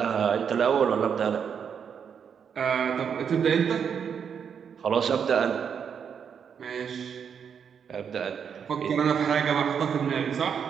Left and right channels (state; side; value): quieter; left; 7.3 dB